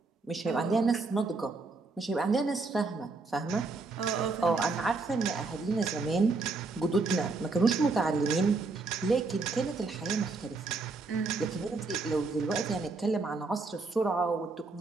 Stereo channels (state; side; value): quieter; left; 3.8 dB